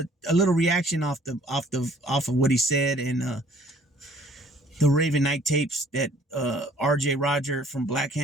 a little reaction off of what he said, and the Raven Night tapes that RJ Roger from Black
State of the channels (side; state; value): both; normal; correlation 0.57